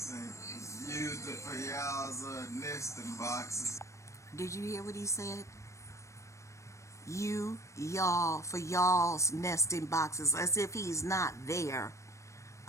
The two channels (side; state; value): right; late; 0.15 ms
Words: and used it for y'all's nesting boxes. Did you hear what he said? Y'all, for y'all's nesting boxes, as if he's not there.